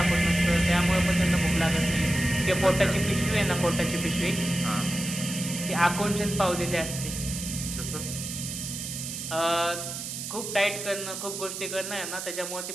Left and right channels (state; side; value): noise; right; hiss, 6 dB below the sound